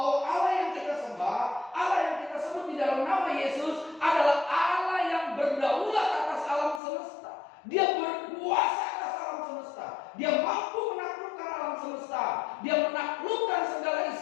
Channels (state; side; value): drops out; right; at 6.8 s